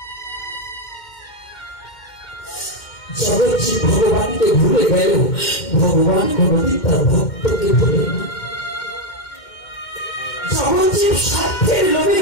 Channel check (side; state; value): right; late; 2.1 ms